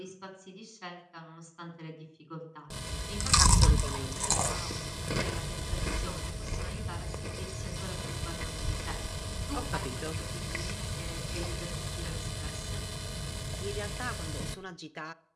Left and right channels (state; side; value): identical; both; correlation 1.00